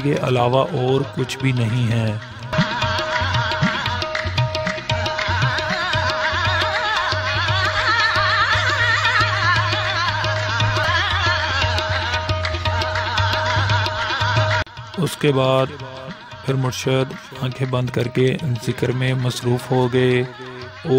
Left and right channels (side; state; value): both; identical; correlation 1.00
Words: के अलावा और कुछ भी नहीं है। उसके बाद फिर मुर्शद आंखें बंद करके जिक्र में मसरूफ़ हो गए